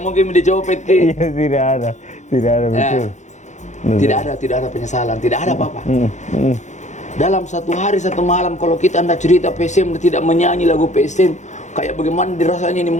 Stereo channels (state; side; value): late; right; 0.34 ms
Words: mungkin dicopet ki. Iya, tidak ada betul. Tidak ada penyesalan, tidak ada apa-apa. Dalam satu hari satu malam kalau kita anda cerita PSM tidak menyanyi lagu PSM, kayak bagaimana dirasanya ini